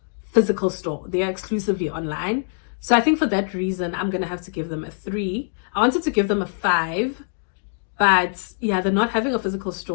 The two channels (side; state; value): right; silent; digital silence